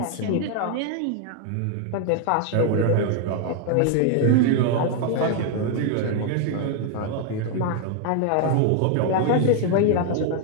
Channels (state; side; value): different; both; correlation 0.00